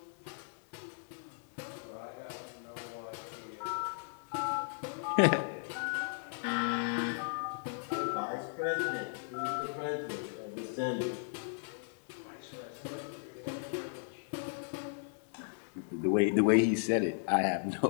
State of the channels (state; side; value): silent; right; digital silence